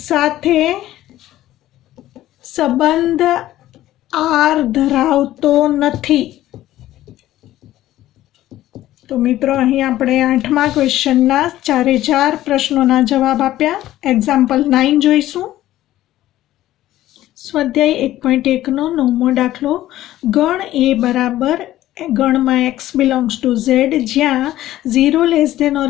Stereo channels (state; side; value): quieter; right; 14.4 dB